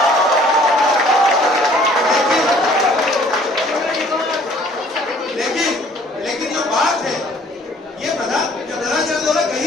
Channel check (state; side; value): normal; both; correlation 0.56